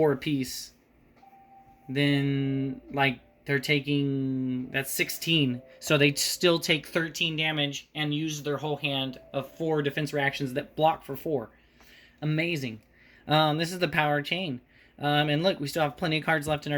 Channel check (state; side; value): identical; both; correlation 1.00